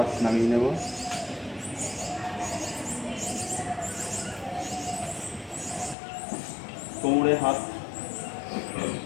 নামিয়ে নেব। কোমরে হাত,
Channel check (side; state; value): right; drops out; at 6.0 s